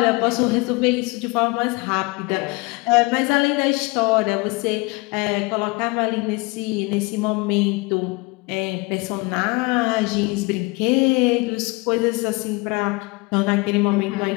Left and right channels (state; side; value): quieter; right; 26.0 dB